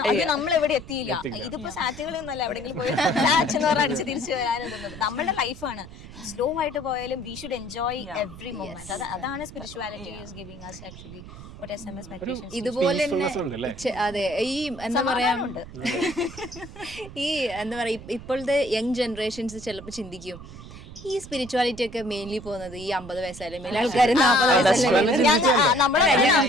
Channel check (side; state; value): right; noise; rumble, 15 dB below the sound